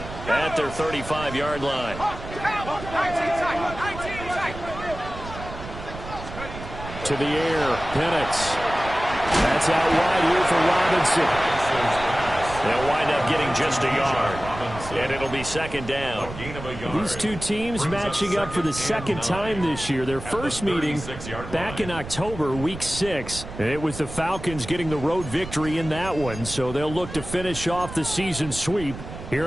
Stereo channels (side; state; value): right; noise; rumble, 11 dB below the sound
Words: at their 35-yard line. To the air, Penix. That's out wide here for Robinson. They'll wind up getting just a yard. And it'll be 2nd down. These two teams matching up for the 2nd time this year. Their first meeting back in October, week 6. It was the Falcons getting the road victory in that one, so they'll look to finish off the season sweep